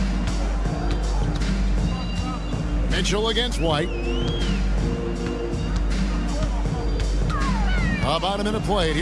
Mitchell against White. About a minute played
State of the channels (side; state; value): both; identical; correlation 1.00